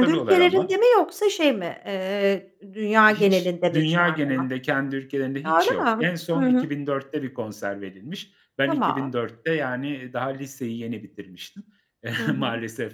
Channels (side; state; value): both; identical; correlation 1.00